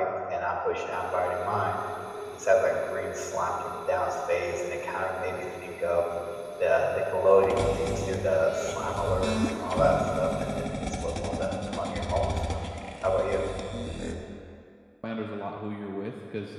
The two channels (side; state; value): both; identical; correlation 1.00